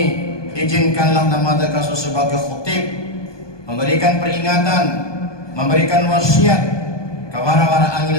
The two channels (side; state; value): right; late; 1.2 ms